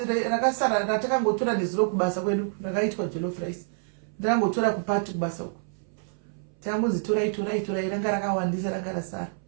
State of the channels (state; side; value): silent; left; 60 dB below the other